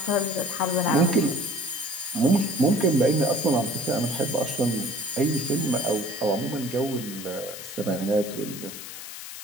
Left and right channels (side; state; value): left; noise; hiss, 11 dB below the sound